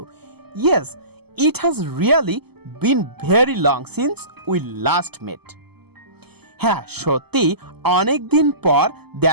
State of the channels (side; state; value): left; late; 0.97 ms